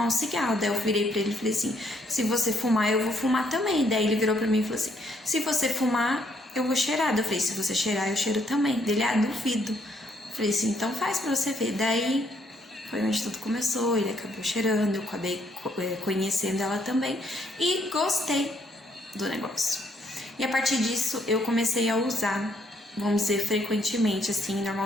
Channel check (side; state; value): both; normal; correlation 0.71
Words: um cigarro. Daí eu virei pra ele e falei assim, se você fumar, eu vou fumar também. Daí ele virou pra mim e falou assim, se você fumar, eu vou cheirar. Daí eu falei, se você cheirar, eu cheiro também. Dele, duvido. Eu falei assim, então faz pra você ver. Daí foi onde tudo começou, ele acabou cheirando, eu acabei conhecendo ela também e gostei do negócio. E a partir disso eu comecei a usar, vamos dizer, frequentemente, assim,